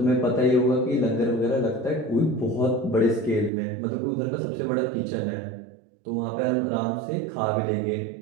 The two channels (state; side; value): drops out; left; at 3.5 s